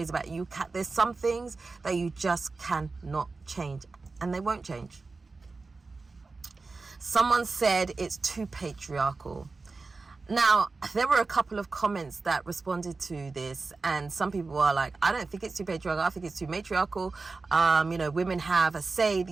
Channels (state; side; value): quieter; left; 3.9 dB